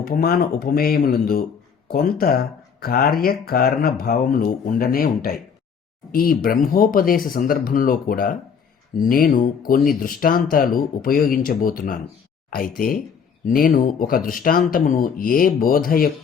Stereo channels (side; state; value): right; quieter; 6.6 dB